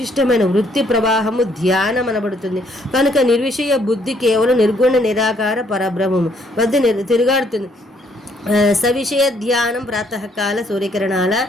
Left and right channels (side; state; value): both; normal; correlation 0.68